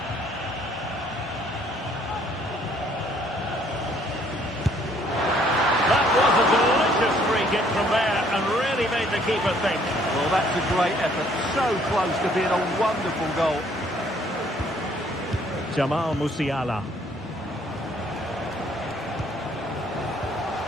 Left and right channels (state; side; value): normal; both; correlation 0.63